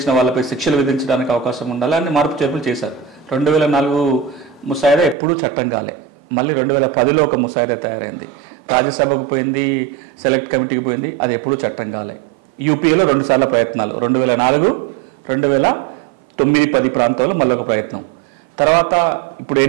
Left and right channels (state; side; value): drops out; left; at 5.2 s